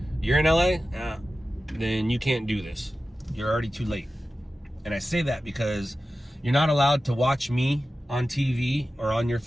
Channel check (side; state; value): both; normal; correlation 0.94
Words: You're in LA? Then you can't do this. You're already too late. And I say that because you're not allowed to watch me on TV or on your